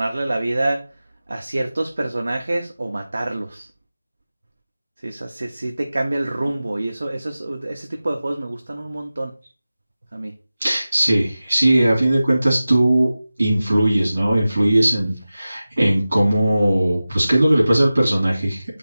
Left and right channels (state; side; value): inverted; both; correlation -0.96